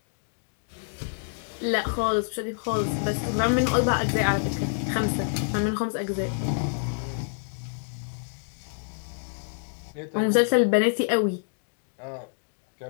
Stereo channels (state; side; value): silent; right; digital silence